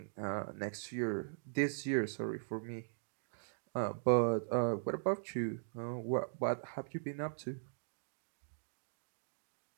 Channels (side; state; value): left; silent; digital silence